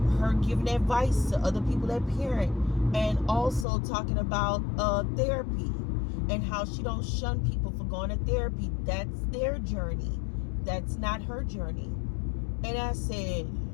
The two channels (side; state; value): right; drops out; at 3.7 s